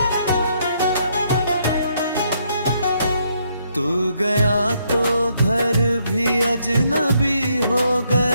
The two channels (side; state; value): both; inverted; correlation -0.73